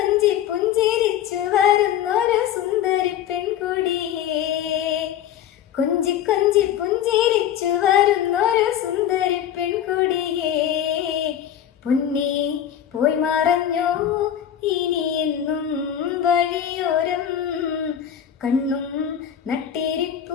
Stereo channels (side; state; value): right; quieter; 10.1 dB